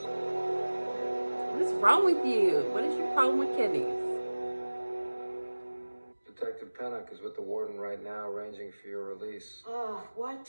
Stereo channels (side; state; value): both; inverted; correlation -1.00